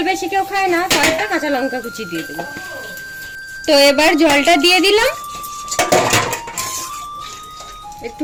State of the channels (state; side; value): identical; both; correlation 1.00